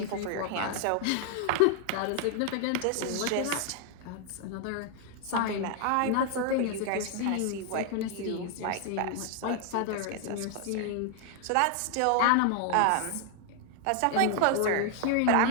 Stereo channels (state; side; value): different; both; correlation 0.00